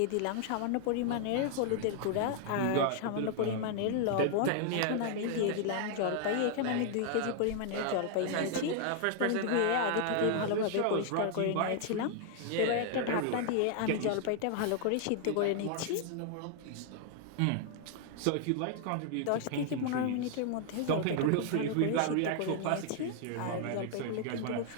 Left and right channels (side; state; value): both; different; correlation 0.00